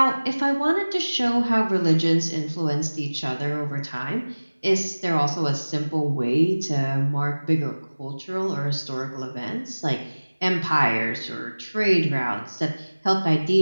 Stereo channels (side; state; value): both; inverted; correlation -1.00